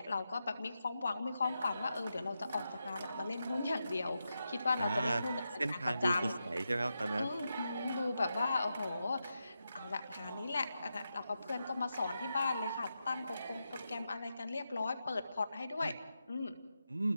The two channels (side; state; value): both; inverted; correlation -0.88